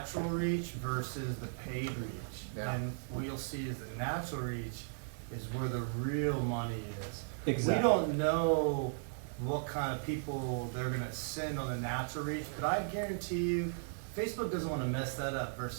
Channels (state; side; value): silent; left; digital silence